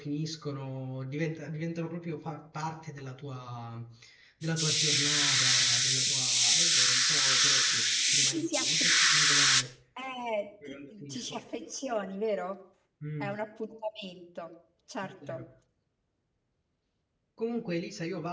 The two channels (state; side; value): identical; both; correlation 1.00